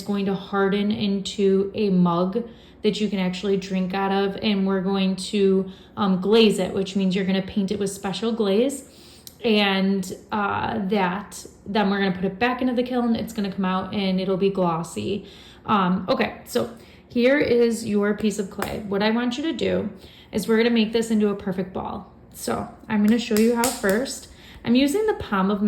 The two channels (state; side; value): identical; both; correlation 1.00